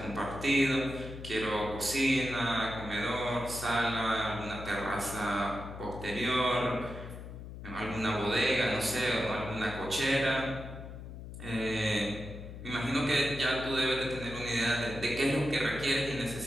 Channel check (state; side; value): noise; left; hum, 11 dB below the sound